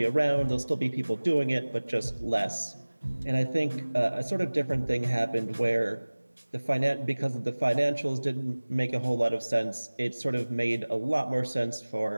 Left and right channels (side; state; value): both; inverted; correlation -1.00